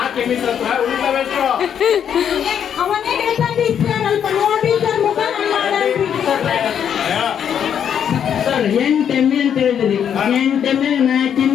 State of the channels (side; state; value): right; quieter; 8.6 dB